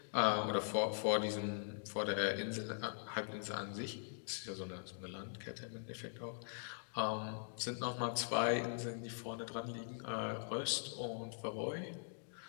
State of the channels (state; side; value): silent; right; digital silence